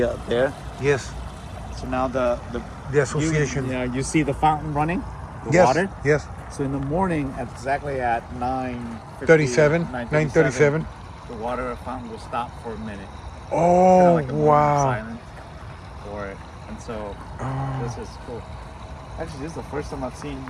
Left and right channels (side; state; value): both; identical; correlation 1.00